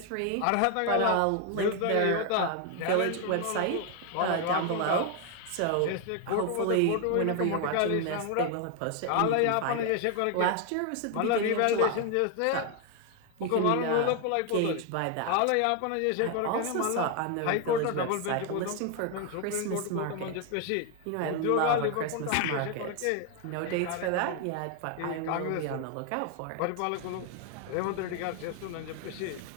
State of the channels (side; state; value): both; different; correlation 0.01